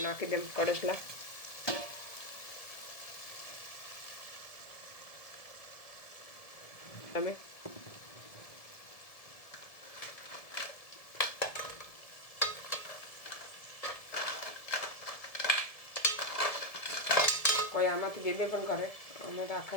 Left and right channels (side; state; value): right; late; 1.7 ms